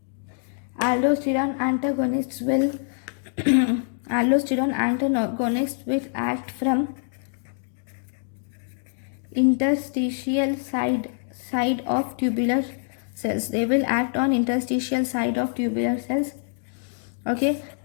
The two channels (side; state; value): right; silent; digital silence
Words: Aldosterone antagonists will aldosterone antagonists will act from interstitial side of tubular cells. They will act on interstitial side of tubular cells. Okay,